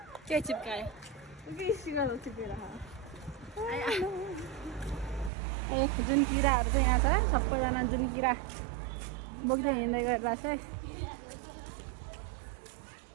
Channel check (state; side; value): drops out; left; at 5.3 s